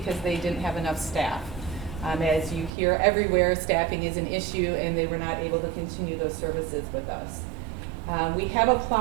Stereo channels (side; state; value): left; drops out; at 2.7 s